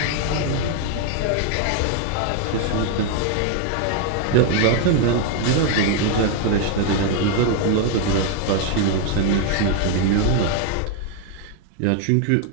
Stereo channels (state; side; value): different; both; correlation 0.00